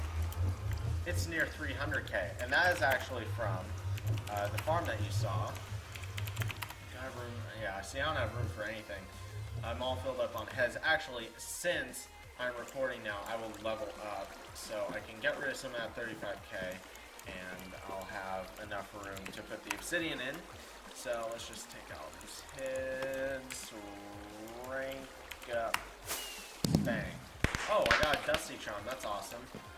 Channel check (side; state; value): both; identical; correlation 1.00